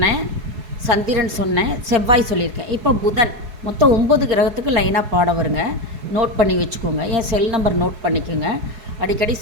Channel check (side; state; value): left; late; 4.7 ms